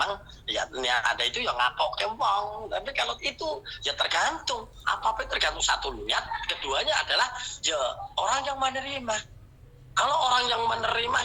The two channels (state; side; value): identical; both; correlation 1.00